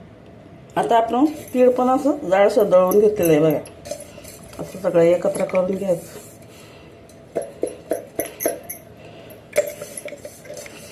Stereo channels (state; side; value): identical; both; correlation 1.00